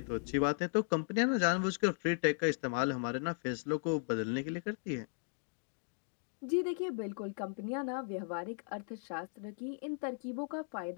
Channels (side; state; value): right; silent; 53 dB below the other